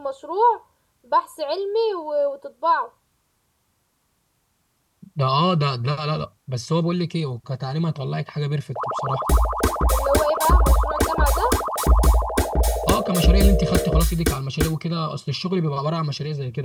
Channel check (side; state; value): both; identical; correlation 1.00